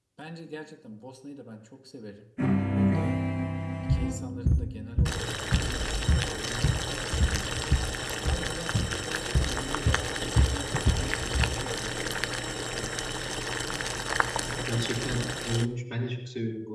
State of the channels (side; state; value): both; identical; correlation 1.00